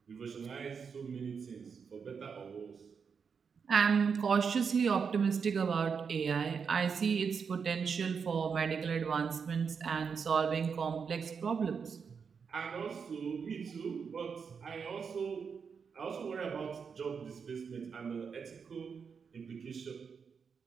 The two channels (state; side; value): quieter; left; 6.1 dB